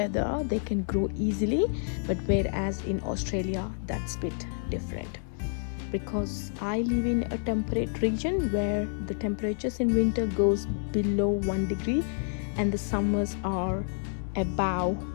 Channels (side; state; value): right; silent; 59 dB below the other